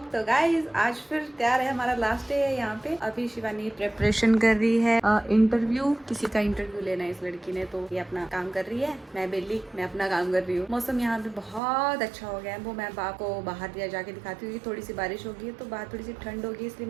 तो गाइस आज फिर तैयार है, हमारा लास्ट डे है यहाँ पे। अभी शिवानी प्रिपरेशन कर रही है इंटरव्यू, किसी का इंटरव्यू लेना है इस लड़की ने, तो ये अपना काम कर रही है। मैं बेली, मैं अपना काम कर रही हूँ। मौसम यहाँ पे बहुत अच्छा हो गया है, वो मैं आपको बाहर दिया जाके दिखाती हूँ। थोड़ी सी बारिश होगी है तो बाहर थोड़ी सी ठंड होगी, इसलिए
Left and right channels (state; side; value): drops out; left; at 11.6 s